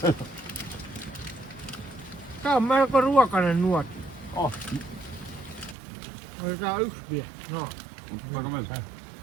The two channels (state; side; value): drops out; left; at 5.8 s